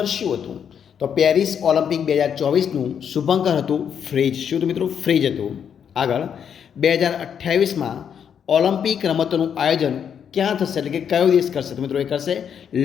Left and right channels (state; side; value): quieter; right; 8.0 dB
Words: શું હતું? તો પેરિસ ઓલિમ્પિક 2024નું શુભંકર હતું ફ્રીજ. શું હતું મિત્રો? ફ્રીજ હતું. આગળ 2028માં ઓલિમ્પિક રમતોનું આયોજન ક્યાં થશે, એટલે કે કયો દેશ કરશે? તો મિત્રો એ કરશે